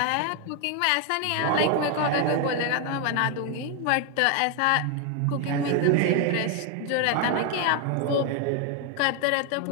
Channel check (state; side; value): different; both; correlation 0.01